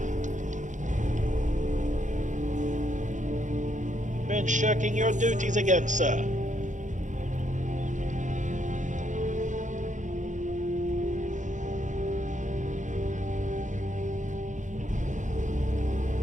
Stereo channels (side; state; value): left; late; 0.36 ms